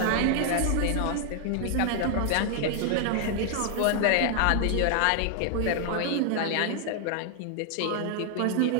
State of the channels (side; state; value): both; different; correlation 0.00